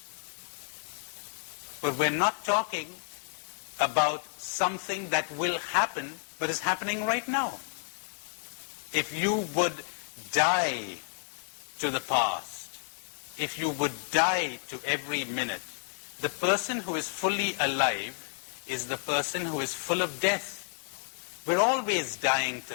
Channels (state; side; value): silent; right; 56 dB below the other